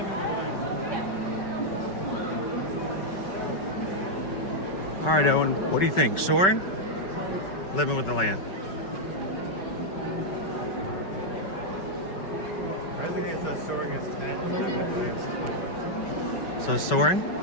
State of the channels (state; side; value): late; right; 5.3 ms